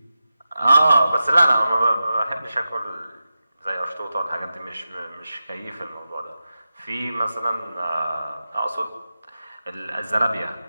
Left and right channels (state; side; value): inverted; both; correlation -0.92